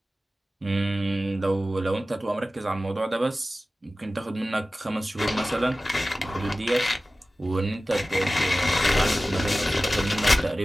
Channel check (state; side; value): normal; both; correlation 0.96